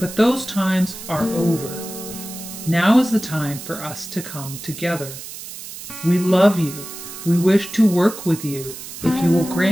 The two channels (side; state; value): right; noise; hiss, 12 dB below the sound